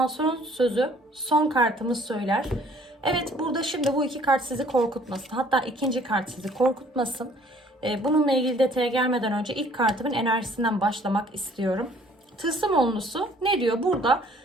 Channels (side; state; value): both; normal; correlation 0.57